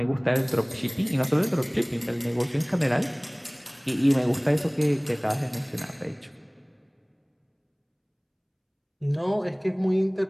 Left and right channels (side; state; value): both; identical; correlation 1.00